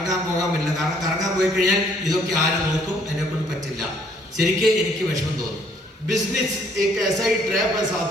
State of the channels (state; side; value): normal; both; correlation 0.64